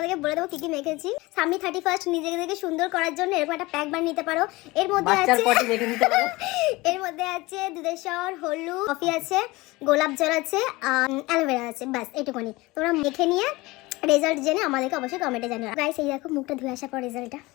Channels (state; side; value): quieter; right; 21.6 dB